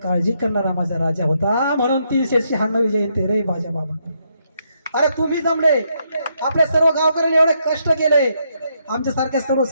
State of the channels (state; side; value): inverted; both; correlation -0.77